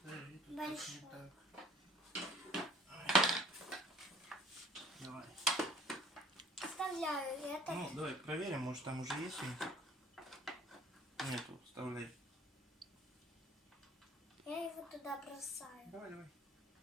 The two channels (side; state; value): both; normal; correlation 0.53